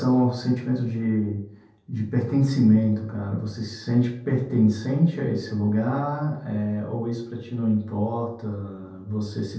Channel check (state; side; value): identical; both; correlation 1.00